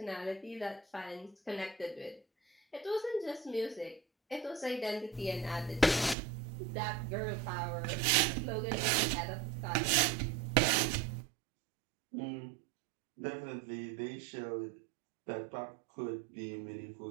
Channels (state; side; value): drops out; left; at 6.2 s